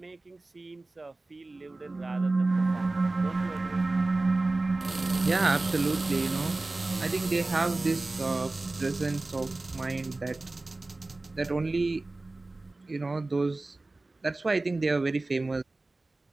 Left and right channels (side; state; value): left; quieter; 3.1 dB